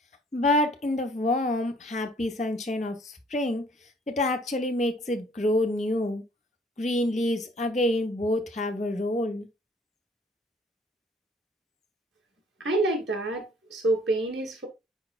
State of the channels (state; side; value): normal; both; correlation 0.58